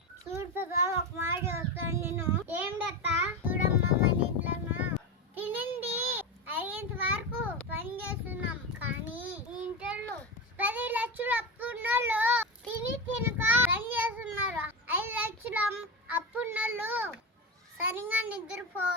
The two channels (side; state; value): both; normal; correlation 0.19